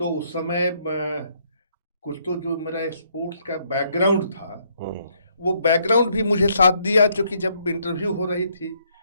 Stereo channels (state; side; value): inverted; both; correlation -0.71